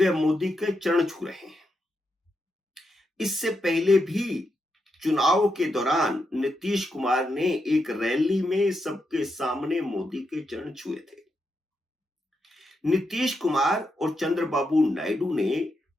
मोदी के चरण छू रहे हैं। इससे पहले भी चुनाव के दौरान नीतीश कुमार ने एक रैली में सबके सामने मोदी के चरण छुए थे। नीतीश कुमार और चंद्रबाबू नायडू ने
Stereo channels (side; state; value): both; normal; correlation 0.84